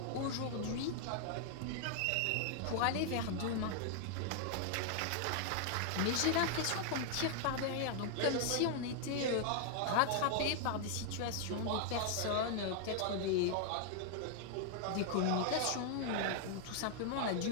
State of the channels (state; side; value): different; both; correlation 0.00